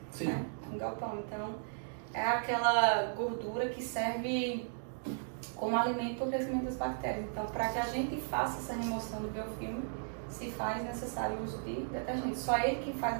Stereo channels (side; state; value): left; silent; digital silence